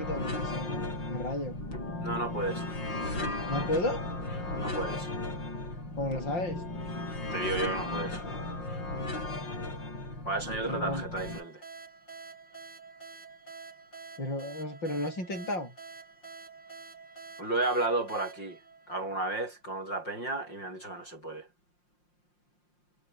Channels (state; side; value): late; right; 5.6 ms